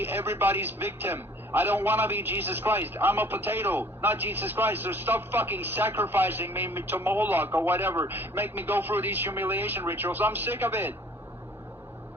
everybody's victim. I don't want to be Jesus Christ. I'm a potato, not Jesus Christ. So stop fucking sacrificing me to Moloch or whatever. Make me go through these humiliation rituals. I'm sick of it.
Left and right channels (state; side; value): normal; both; correlation 0.53